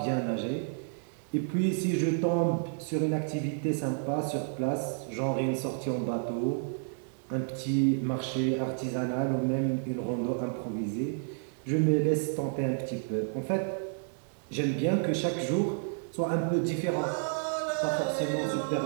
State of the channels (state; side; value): silent; left; digital silence